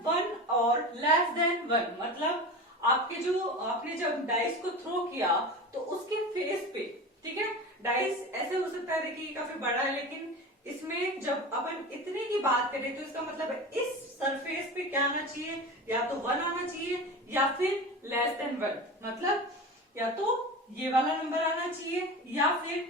1 और लेस देन 1, मतलब आपने जब डाइस को थ्रो किया तो उसके फेस पे, ठीक है, डाइस ऐसे हो सकता है, देखिए काफी बड़ा है, लेकिन इसमें जब अपन इतने की बात करें तो इसका मतलब है इस सरफेस पे क्या आना चाहिए, या तो 1 आना चाहिए या फिर लेस देन 1, मतलब या तो ये वाला नंबर आना चाहिए या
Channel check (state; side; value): normal; both; correlation 0.29